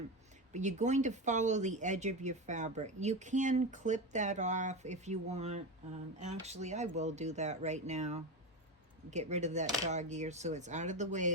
but you're going to follow the edge of your fabric. You can clip that off if you want. Actually, I will do that right now. Get rid of that dog ear so it's out of the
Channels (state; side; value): normal; both; correlation 0.19